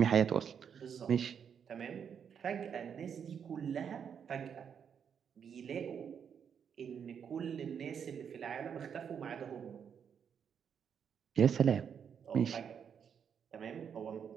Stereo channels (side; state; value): left; quieter; 7.5 dB